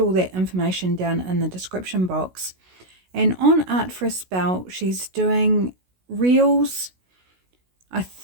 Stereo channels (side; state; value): left; late; 16 ms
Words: that information down in the description box. And on Art for a Spell, she's doing reels, I